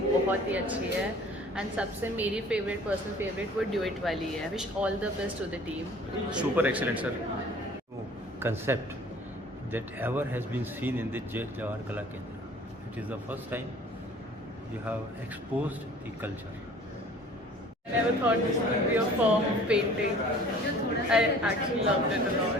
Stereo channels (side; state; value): both; normal; correlation 0.49